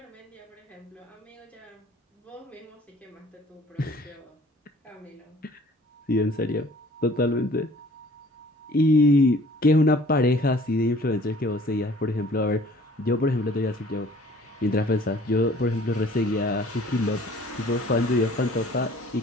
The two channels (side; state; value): both; normal; correlation 0.53